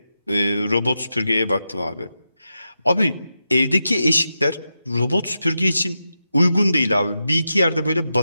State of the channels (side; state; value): both; inverted; correlation -0.88